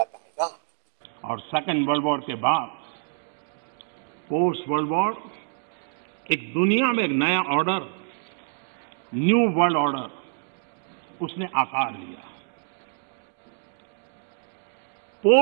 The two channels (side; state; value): left; silent; digital silence